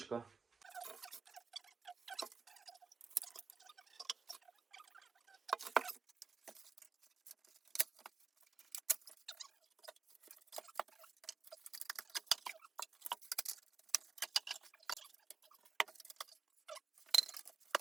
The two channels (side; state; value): left; quieter; 5.0 dB